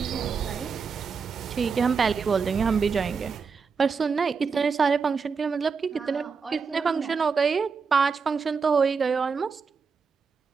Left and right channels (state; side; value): quieter; left; 5.4 dB